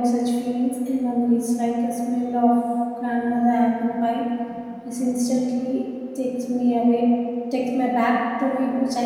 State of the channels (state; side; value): identical; both; correlation 1.00